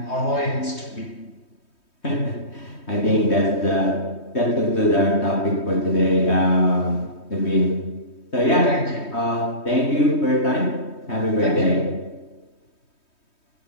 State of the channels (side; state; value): right; late; 3.2 ms